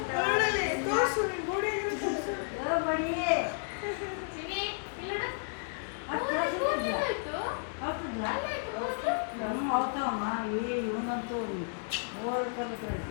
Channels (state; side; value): silent; right; 56 dB below the other